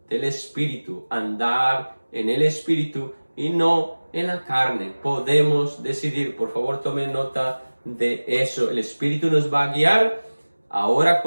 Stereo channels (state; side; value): inverted; both; correlation -1.00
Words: del Espíritu, andar en el Espíritu y no en la carne. Podemos decidir. Por favor, tomen nota de eso. El Espíritu nos va a guiar. Ahora